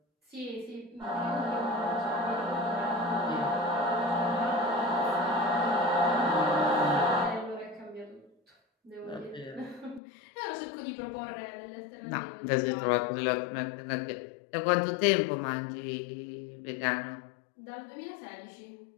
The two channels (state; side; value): drops out; right; at 10.0 s